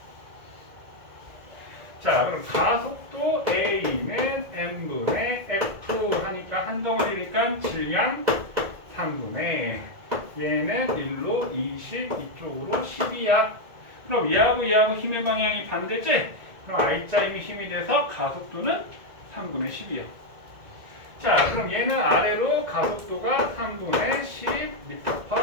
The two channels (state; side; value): late; left; 1.9 ms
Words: 자, 그럼 가속도 A는 M분의 F 하니까 한 덩어리니까 질량 3분의 얘는 1로 20 이쪽으로 10이야. 그럼 얘하고 얘하고 힘의 방향이 반대지? 그럼 R자임이 힘이 돼서 가속도는 3분의 10이야. 자, 그럼 얘는 아래로 가속도가 3분의